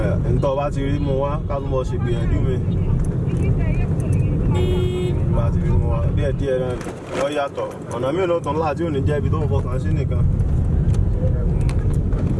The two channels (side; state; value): both; identical; correlation 1.00